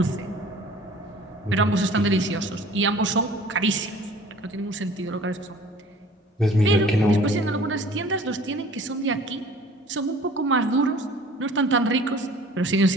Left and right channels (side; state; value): both; normal; correlation 0.49